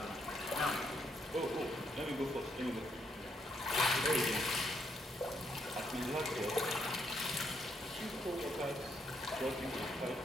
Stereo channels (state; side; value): normal; both; correlation 0.75